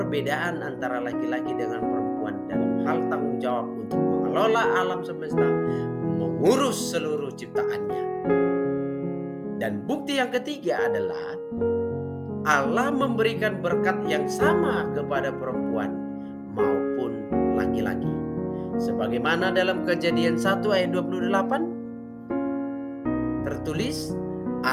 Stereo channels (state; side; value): identical; both; correlation 1.00